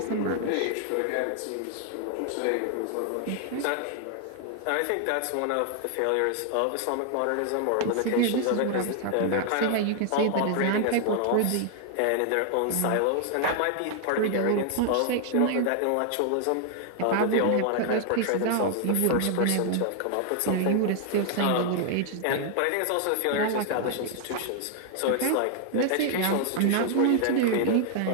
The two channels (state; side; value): different; both; correlation 0.00